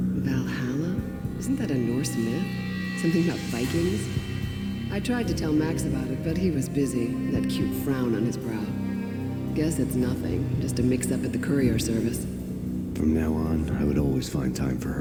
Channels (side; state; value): both; identical; correlation 1.00